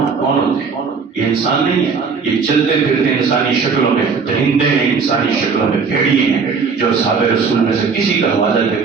ہوتے ہیں؟ یہ انسان نہیں ہے. یہ چلتے پھرتے انسانی شکلوں میں درندے ہیں، انسانی شکلوں میں بھیڑیے ہیں جو صحابہ رسول میں سے کسی کا حوالہ دے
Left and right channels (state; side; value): quieter; left; 5.3 dB